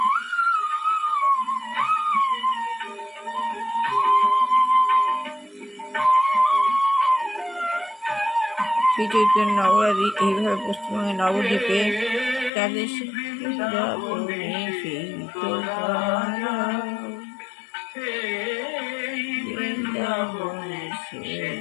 শ্রী চৈতন্য নগরাদি এইভাবে পশ্চিমবঙ্গের নবদ্বীপে তাদের বৃন্দাবনে সেই তো বৃন্দাবনে সেই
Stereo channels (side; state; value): right; drops out; at 12.5 s